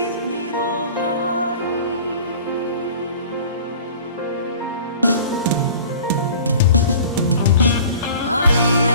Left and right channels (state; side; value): inverted; both; correlation -0.43